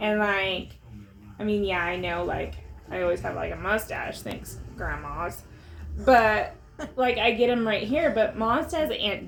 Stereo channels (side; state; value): both; identical; correlation 1.00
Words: like, I mean, yeah, I know, like, I always have like a mustache, thanks, grandmas. But like, I get them right here. But Mom says Aunt